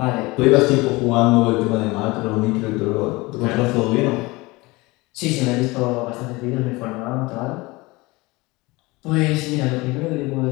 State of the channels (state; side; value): quieter; right; 22.9 dB